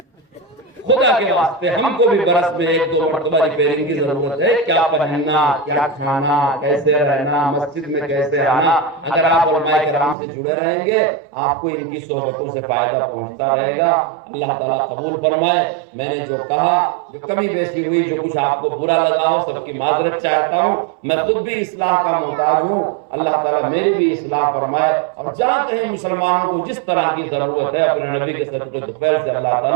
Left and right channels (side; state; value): left; drops out; at 10.2 s